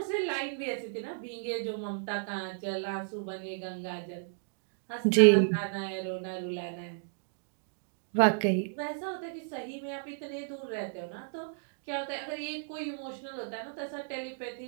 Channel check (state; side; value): silent; left; digital silence